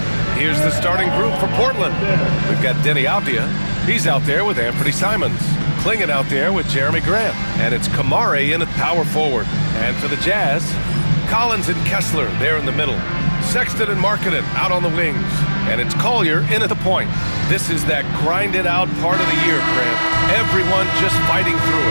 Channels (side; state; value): both; inverted; correlation -1.00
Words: Here's the starting group for Portland. We've got Denny Avdia. He's out there with Anthony Simons. Klingon out there with Jeremy Grant. And it's Kamari in at power forward. And for the Jazz, Collins and Kessler there in the middle. Sexton and Markkanen out on the wings. And it's Collier in at the point. This is that grinded out part of the year, Grant. Everyone just fighting through